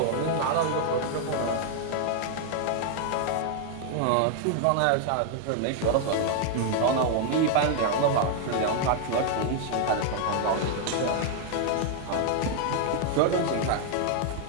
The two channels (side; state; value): both; different; correlation 0.00